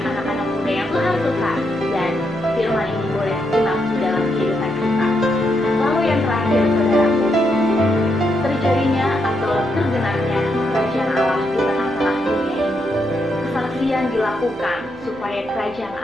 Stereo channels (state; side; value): noise; left; hum, 29 dB below the sound